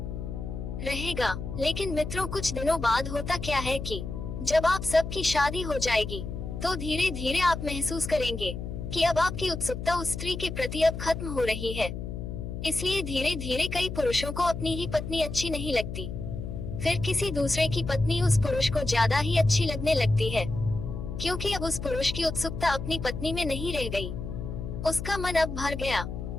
रहेगा। लेकिन मित्रों, कुछ दिनों बाद होता क्या है कि जब आप सबकी शादी हो जाएगी तो धीरे धीरे आप महसूस करेंगे कि अब आपकी उत्सुकता उस स्त्री के प्रति अब खत्म हो रही है। इसलिए धीरे धीरे कई पुरुषों को अपनी ही पत्नी अच्छी नहीं लगती, फिर किसी दूसरे की पत्नी उस पुरुष को ज्यादा ही अच्छी लगने लगती है, क्योंकि अब उस पुरुष की उत्सुकता अपनी पत्नी में नहीं रह गई। उसका मन अब भर गया,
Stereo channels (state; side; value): noise; left; hum, 6 dB below the sound